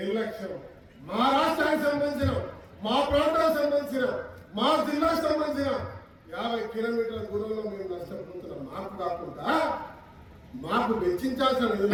మా రాష్ట్రానికి సంబంధించిన, మా ప్రాంతానికి సంబంధించిన, మా జిల్లాకు సంబంధించిన 50 కిలోమీటర్ల దూరంలో మేము నష్టపోతున్నాం. మాకు కాకుండా మాకు వెచ్చించాల్సిన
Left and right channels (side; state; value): both; identical; correlation 1.00